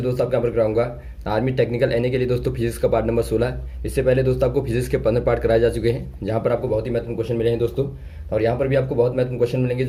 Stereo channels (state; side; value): identical; both; correlation 1.00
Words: दोस्तों आपको यहाँ पर कराऊंगा आर्मी टेक्निकल एनए के लिए दोस्तों फिजिक्स का पार्ट नंबर 16। इससे पहले दोस्तों आपको फिजिक्स के 15 पार्ट कराए जा चुके हैं, जहाँ पर आपको बहुत ही महत्वपूर्ण क्वेश्चन मिले हैं दोस्तों। और यहाँ पर भी आपको बहुत महत्वपूर्ण क्वेश्चन मिलेंगे